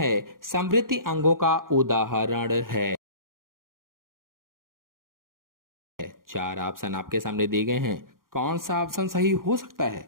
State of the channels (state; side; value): late; left; 0.91 ms